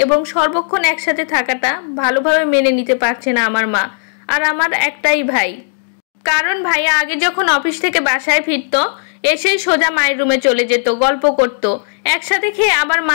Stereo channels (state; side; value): silent; right; digital silence